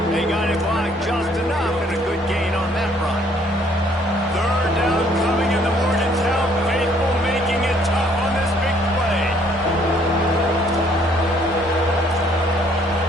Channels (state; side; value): normal; both; correlation 0.63